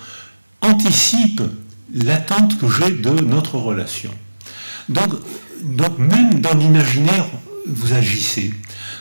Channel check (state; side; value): inverted; both; correlation -1.00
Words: anticipe l'attente que j'ai de notre relation. Donc même dans l'imaginaire, vous agissez.